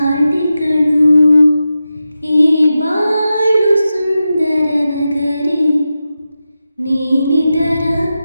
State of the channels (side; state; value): both; inverted; correlation -0.92